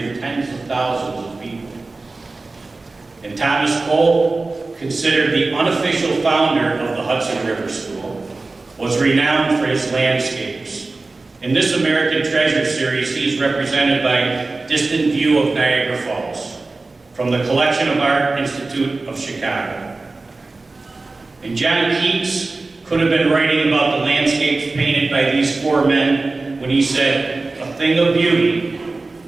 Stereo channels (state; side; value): quieter; left; 3.5 dB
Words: tens of thousands of people. And Thomas Cole, considered the unofficial founder of the Hudson River School, was renowned for his landscapes. In this American Treasure series, he's represented by Distant View of Niagara Falls, from the Collection of Art Institute of Chicago. And John Keats could have been writing about the landscapes painted by these four men when he said, "A thing of beauty